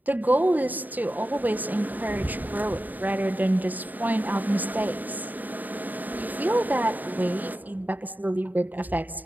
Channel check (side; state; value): left; late; 0.085 ms